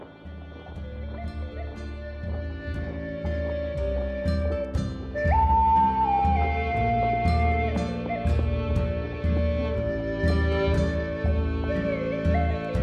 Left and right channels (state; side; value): identical; both; correlation 1.00